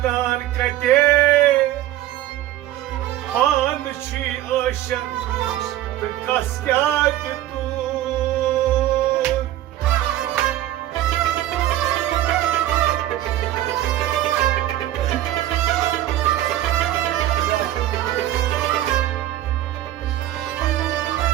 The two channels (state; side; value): quieter; left; 13.7 dB